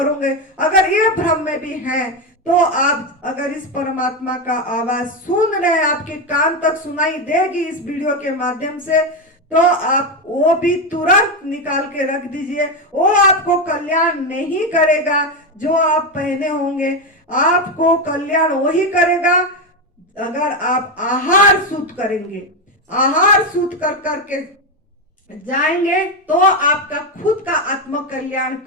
अगर ये भ्रम में भी हैं, तो आप अगर इस परमात्मा का आवाज सुन रहे हैं, आपके कान तक सुनाई देगी इस वीडियो के माध्यम से, तो आप वो भी तुरंत निकाल के रख दीजिए। वो आपको कल्याण नहीं करेगा जो आप पहने होंगे, आपको कल्याण वही करेगा अगर आप आहार शुद्ध करेंगे। आहार शुद्ध कर करके जाएंगे तो आपका खुद का आत्म कल्याण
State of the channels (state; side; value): normal; both; correlation 0.10